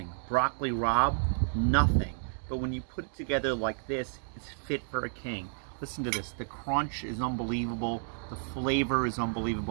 Broccoli rabe, nothing. But when you put it together like this, it's fit for a king. Listen to this. The crunch is unbelievable. The flavor is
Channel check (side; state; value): left; silent; digital silence